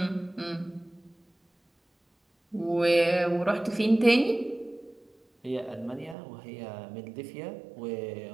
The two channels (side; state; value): left; drops out; at 6.2 s